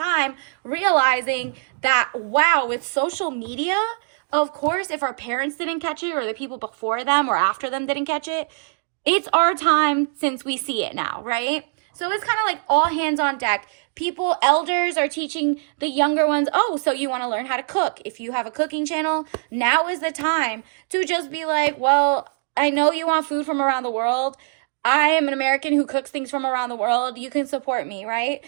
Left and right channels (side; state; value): left; silent; digital silence